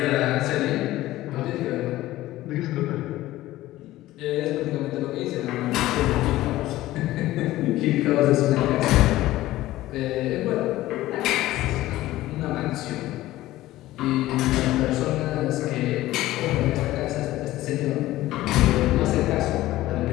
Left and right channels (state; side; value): quieter; right; 16.1 dB